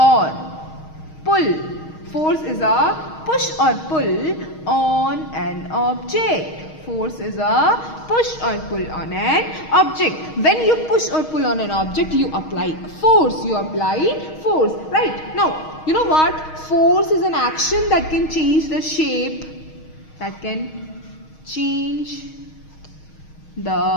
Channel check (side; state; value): right; late; 6.4 ms